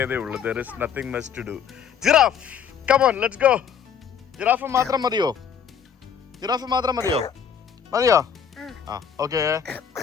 ഉള്ളൂ. There is nothing much to do. Giraffe, come on, let's go. Giraffe മാത്രം മതിയോ? ജിറാഫ് മാത്രം മതിയോ? ആ, ഓക്കെ.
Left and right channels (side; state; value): right; quieter; 7.6 dB